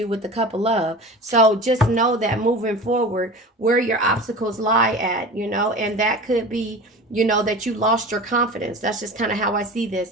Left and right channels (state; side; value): normal; both; correlation 0.35